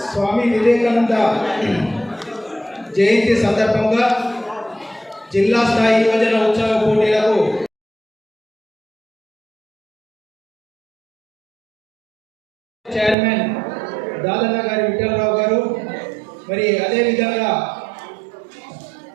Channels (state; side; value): drops out; left; at 13.2 s